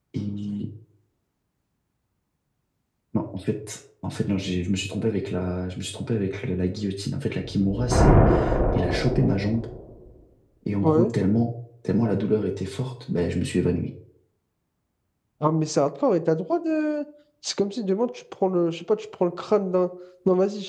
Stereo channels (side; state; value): both; identical; correlation 1.00